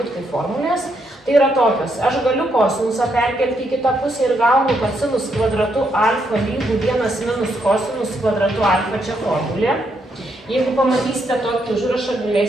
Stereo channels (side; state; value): both; normal; correlation 0.77